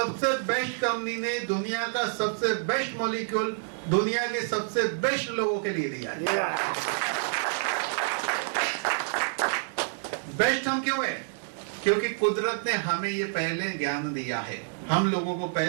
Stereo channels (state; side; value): silent; left; digital silence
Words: बेस्ट कंपनी ने दुनिया का सबसे बेस्ट मॉलिक्यूल दुनिया के सबसे बेस्ट लोगों के लिए दिया है। बेस्ट हम क्यों है? क्योंकि कुदरत ने हमें ये पहले ज्ञान दिया है, हम लोगों को